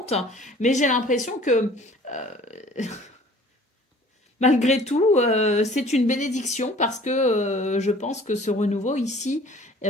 mais j'ai l'impression que malgré tout, c'est une bénédiction parce que je pense que ce renouveau ici,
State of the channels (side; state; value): both; normal; correlation 0.50